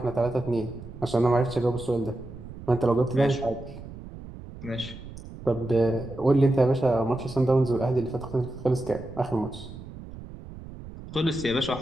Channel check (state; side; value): noise; right; rumble, 14 dB below the sound